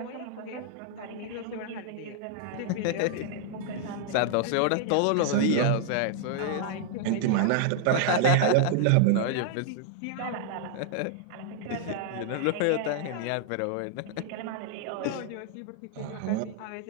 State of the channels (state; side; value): different; both; correlation -0.01